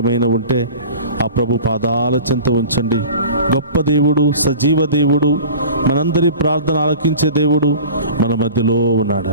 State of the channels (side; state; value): both; inverted; correlation -0.39